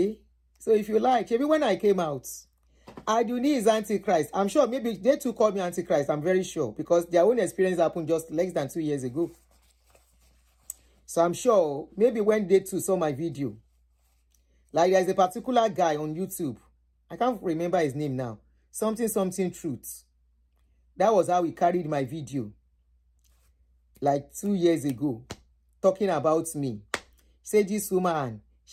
So if you like, maybe when I came out, Aduni is Antichrist. I'm sure maybe they too called me Antichrist. I'm very sure because their own experience happened just less than 2 years ago. So I'm sure maybe when they too saw my video, like there's a particular guy on YouTube. I can't remember his name now. Something truth. That was how he carried my video like 2 years ago, talking about me. He said this woman,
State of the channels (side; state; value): both; identical; correlation 1.00